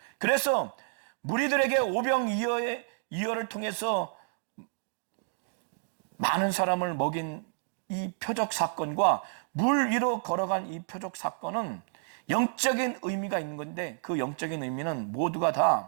그래서 무리들에게 오병이어를 통해서 많은 사람을 먹인 이 표적 사건과 물 위로 걸어간 이 표적 사건은 영적인 의미가 있는 건데, 그 영적인 의미는 모두가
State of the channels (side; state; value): left; silent; digital silence